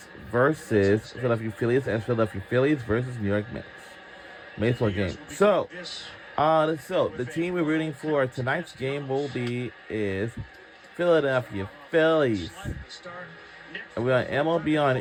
versus Philadelphia Phillies, and Philadelphia Phillies versus New York Mets. Baseball game. So the team we're rooting for tonight's game is Philadelphia Phillies. And we're on MLB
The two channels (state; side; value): identical; both; correlation 1.00